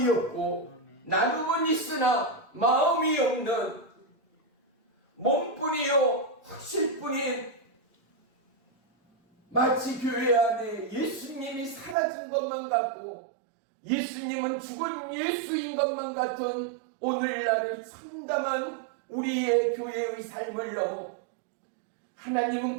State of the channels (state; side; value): drops out; left; at 12.0 s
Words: 없고 나눔은 있으나 마음이 없는 몸뿐이요 확실뿐인 마치 교회 안에 예수님이 사라진 것만 같고 예수님은 죽은 예수인 것만 같은 오늘날의 참담한 우리의 교회의 삶을 넘어